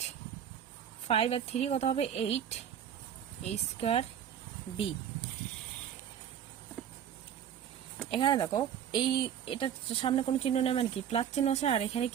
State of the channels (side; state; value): left; quieter; 9.2 dB